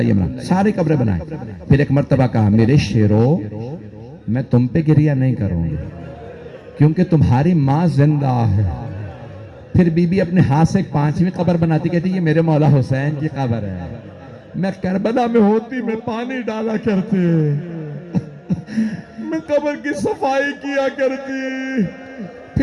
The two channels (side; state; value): both; identical; correlation 1.00